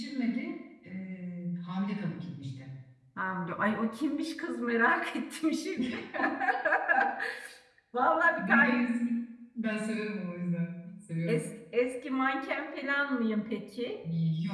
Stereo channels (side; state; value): both; identical; correlation 1.00